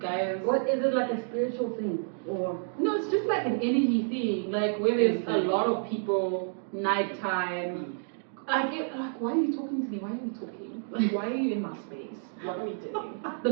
What is it, like a spiritual thing or? No, it's just like an energy thing. Like where there's a lot of people, nighttime. Like why are you talking to me? Why are you talking? Like why are you in my space? What are we doing? The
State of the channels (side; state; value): left; silent; digital silence